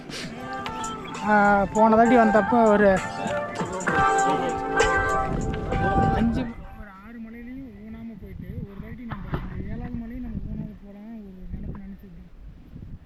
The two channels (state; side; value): identical; both; correlation 1.00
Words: போன தாட்டி வந்தப்போ ஒரு 6 மலையிலையும் ஊனாமல் போயிட்டு ஒரு தாட்டி நம்ம இந்த 7வது மலையும் நம்ம ஊனாமல் போகலாம் ஒரு நினச்சிருந்தோம்.